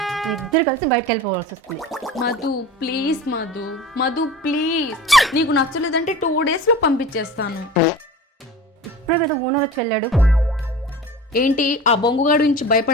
ఇద్దరు కలిసి బయటకు వెళ్ళిపోవాల్సి వస్తుంది. మధు ప్లీజ్ మధు, మధు ప్లీజ్, నీకు నచ్చలేదంటే 2 డేస్లో పంపించేస్తాను. ఇప్పుడే కదా ఓనర్ వచ్చి వెళ్ళాడు. ఏంటి ఆ బొంగుగాడు నుంచి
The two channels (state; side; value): normal; both; correlation 0.36